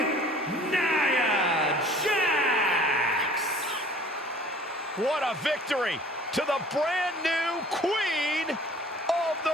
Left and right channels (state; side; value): normal; both; correlation 0.50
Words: Nia Jax. What a victory to the brand new Queen of